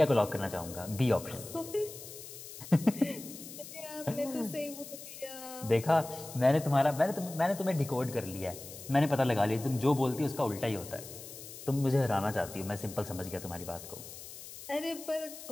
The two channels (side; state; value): left; noise; hiss, 13 dB below the sound